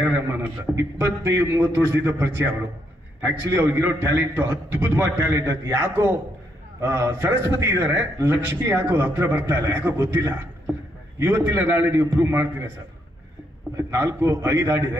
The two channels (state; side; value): normal; both; correlation 0.76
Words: ರೆಹಮಾನ್ ಅಂತ. 25-30 ವರ್ಷದಿಂದ ಪರಿಚಯ ಅವರು. ಆಕ್ಚುಲಿ ಅವ್ರಿಗಿರೋ ಟ್ಯಾಲೆಂಟ್ ಅದ್ಭುತವಾದ ಟ್ಯಾಲೆಂಟ್. ಅದು ಯಾಕೋ ಸರಸ್ವತಿ ಇದ್ದಾರೆ, ಲಕ್ಷ್ಮಿ ಯಾಕೋ ಹತ್ರ ಬರ್ತಾ ಇಲ್ಲ, ಯಾಕೋ ಗೊತ್ತಿಲ್ಲ. ಇವತ್ತಿಲ್ಲ ನಾಳೆ ನೀವು ಪ್ರೂವ್ ಮಾಡ್ತೀರಾ ಸರ್. 4-5